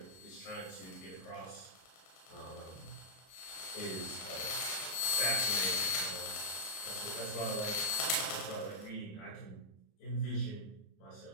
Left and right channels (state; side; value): late; right; 26 ms